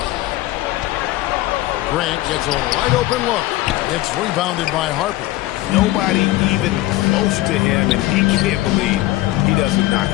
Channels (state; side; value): quieter; right; 17.0 dB